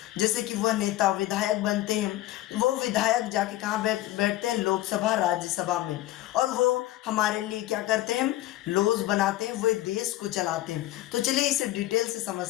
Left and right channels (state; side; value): quieter; right; 15.6 dB